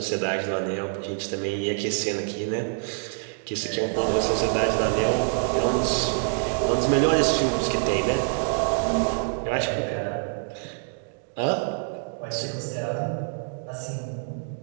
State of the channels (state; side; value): silent; left; digital silence